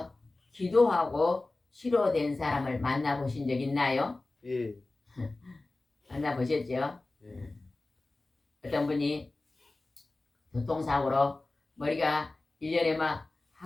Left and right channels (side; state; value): right; quieter; 3.1 dB